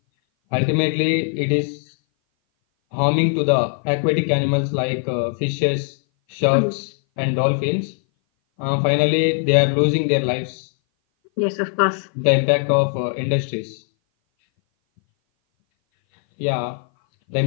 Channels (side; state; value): right; silent; 59 dB below the other